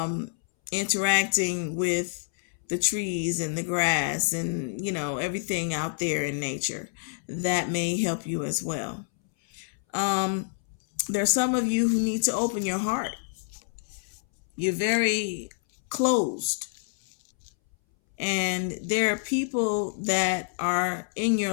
interacting with the trees and the grass and, everything out there in nature. That may help you as well. There's some of you who need to open your heart. You're very closed. And there are people that are in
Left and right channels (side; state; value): right; silent; 60 dB below the other